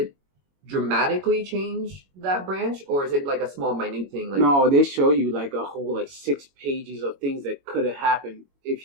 dramatically change that branch, or is it like a small, minute thing? Like, no, they show you like a whole like 6 pages of things that could have happened if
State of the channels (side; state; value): left; late; 21 ms